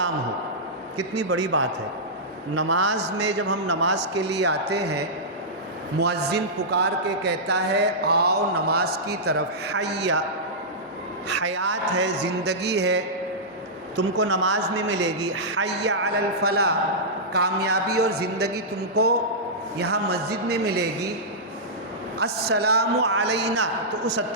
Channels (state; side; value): normal; both; correlation -0.12